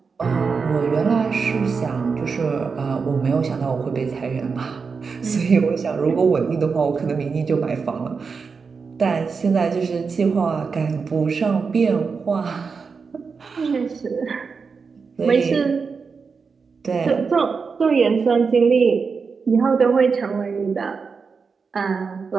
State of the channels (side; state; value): left; quieter; 5.2 dB